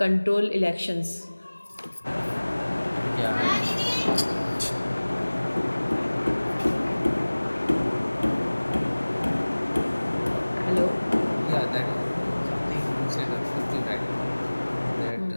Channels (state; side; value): inverted; both; correlation -1.00